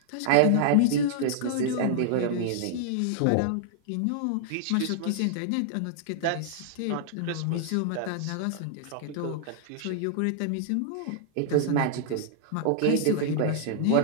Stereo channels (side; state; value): both; different; correlation -0.01